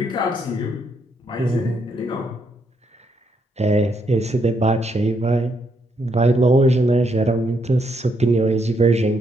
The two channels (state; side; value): normal; both; correlation 0.75